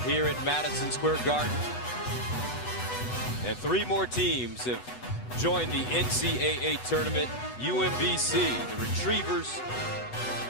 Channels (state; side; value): late; right; 8.1 ms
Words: here at Madison Square Garden. And 3 more teams have joined the NCAA tournament. UMBC, the Retrievers,